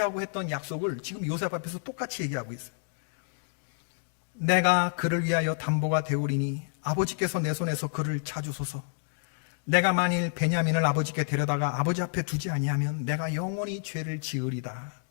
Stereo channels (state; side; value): silent; right; digital silence